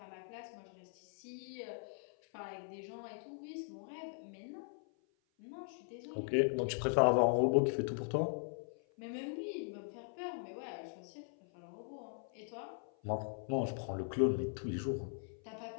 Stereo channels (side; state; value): right; silent; 51 dB below the other